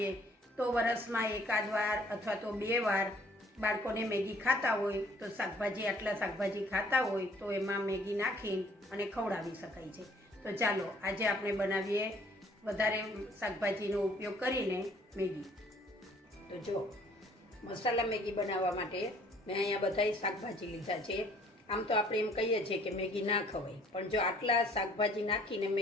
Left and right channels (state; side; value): normal; both; correlation 0.59